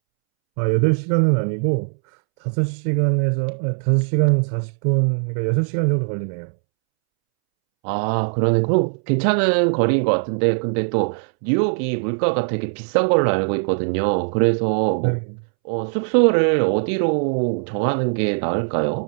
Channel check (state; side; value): silent; left; 65 dB below the other